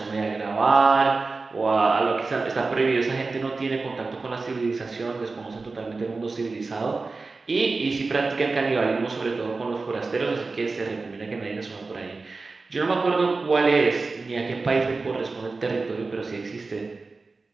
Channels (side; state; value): left; quieter; 3.9 dB